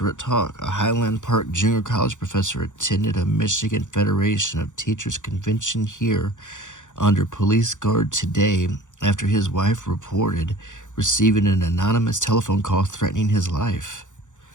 at talk. A Highland Park junior college professor attended a Michigan Federation of Teachers convention here under police guard today after his wife reported receiving an anonymous telephone call threatening his life.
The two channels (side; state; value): right; late; 0.86 ms